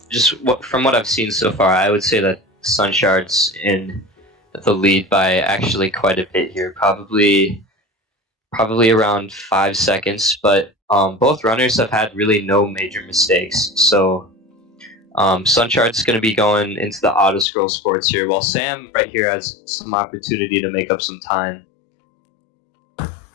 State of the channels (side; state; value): right; drops out; at 17.4 s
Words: from what I've seen so far, I would say that SunShard's in the lead by actually quite a bit here, probably around 5 seconds. But both runners have had really no major mistakes, so SunShard's going to be going into the auto scroll sports here, while Sam right here has some opportunity to make up some time.